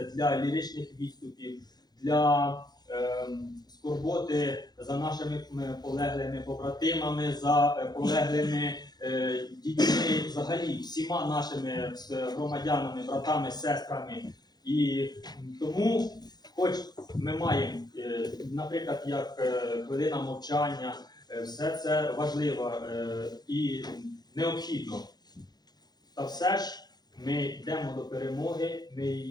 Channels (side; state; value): right; late; 0.20 ms